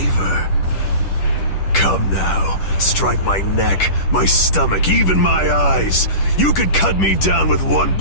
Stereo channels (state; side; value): late; right; 10 ms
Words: Come now, strike my neck, my stomach, even my eyes. You could cut me down with one